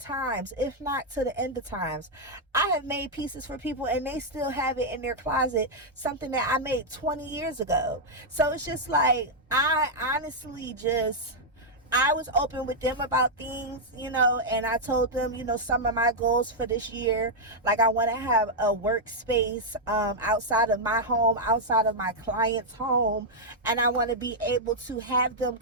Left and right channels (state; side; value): normal; both; correlation -0.04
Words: if not to the end of times. I have made pieces for people and they still have it in their closet, something that I made 20 years ago. So it's just like, I honestly I was open with them about things, you know, and I told them, you know, some of my goals for this year. Like I want to have a workspace outside of my home, outside of my client's home, and I want to be able to have them